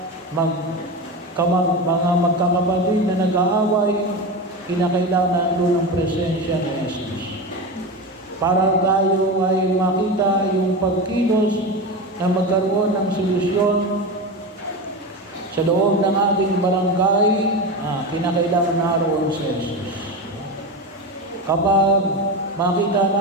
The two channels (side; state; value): both; normal; correlation 0.22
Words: magkakapatid na nag-aaway, kinakailangan doon ang presensya ni Jesus. Para tayo ay makita yung pagkilos na magkaroon ng solusyon sa loob ng ating barangay, kinakailangan naroon si Jesus. Kapag makita